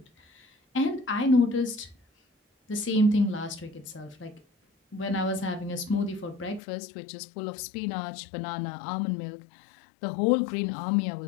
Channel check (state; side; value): drops out; right; at 6.6 s